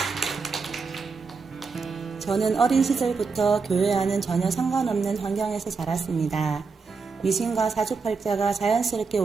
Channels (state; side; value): quieter; left; 4.8 dB